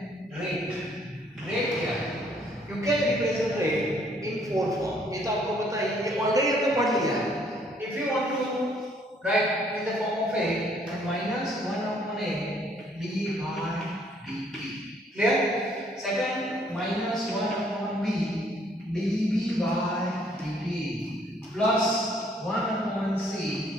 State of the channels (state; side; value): normal; both; correlation 0.64